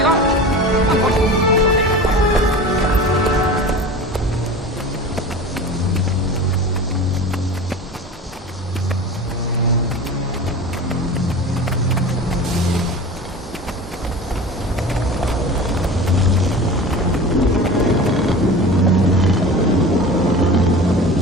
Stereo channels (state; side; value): normal; both; correlation 0.35